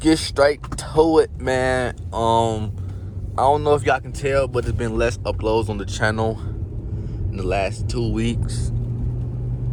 straight to it, man. I don't know if y'all can tell, but there's been less uploads on the channel in the last 2 weeks.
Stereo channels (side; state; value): both; identical; correlation 1.00